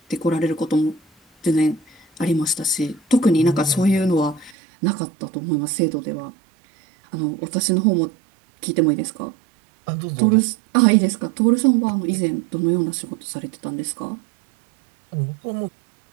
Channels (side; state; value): left; drops out; at 4.5 s